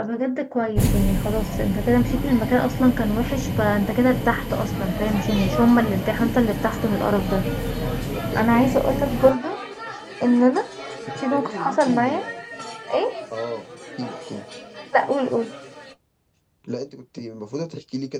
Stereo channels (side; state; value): both; identical; correlation 1.00